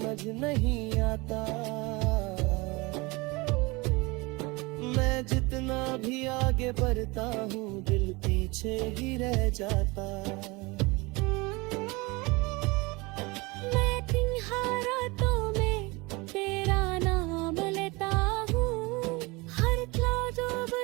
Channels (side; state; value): left; quieter; 25.0 dB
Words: नहीं आता। मैं जितना भी आगे बढ़ता हूँ दिल पीछे ही रह जाता।